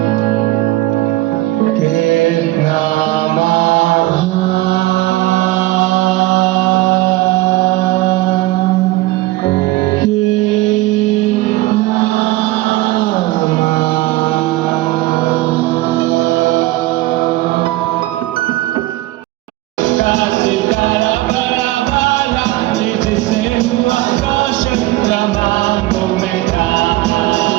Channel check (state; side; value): quieter; left; 18.0 dB